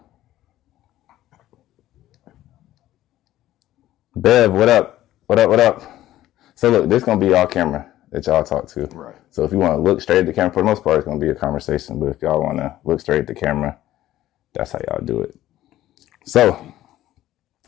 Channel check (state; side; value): quieter; right; 14.2 dB